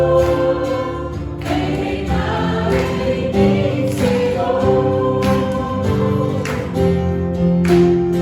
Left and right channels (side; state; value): both; identical; correlation 1.00